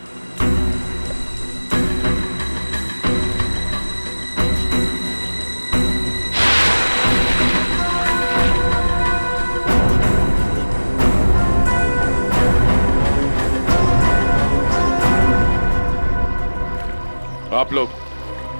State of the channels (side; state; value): both; inverted; correlation -1.00